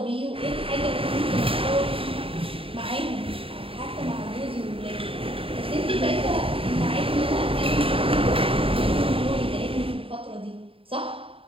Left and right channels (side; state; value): left; late; 0.27 ms